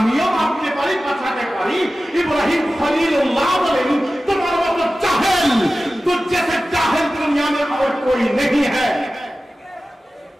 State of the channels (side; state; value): both; normal; correlation 0.95